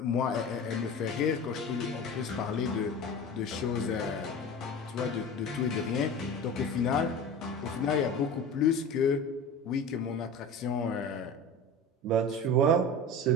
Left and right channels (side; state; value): both; normal; correlation 0.33